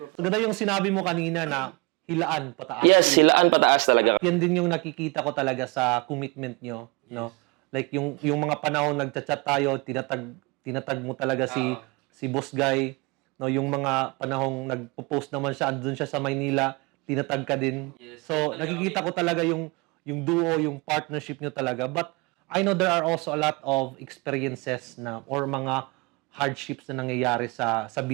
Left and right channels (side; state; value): left; quieter; 27.4 dB